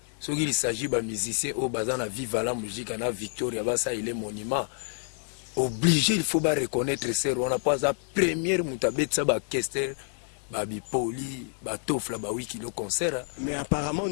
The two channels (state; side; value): silent; right; 59 dB below the other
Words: soki il s'agit ba musicien au bazana viva la musique na Victoria basa il est monument obligé il faut ba reconnaître ser wana pas la première mutabetsa ba kester ba bipoli ba tofla ba wiki le concert mais apparemment on